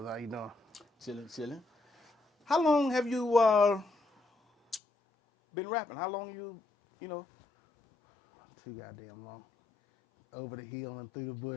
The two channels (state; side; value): drops out; right; at 4.8 s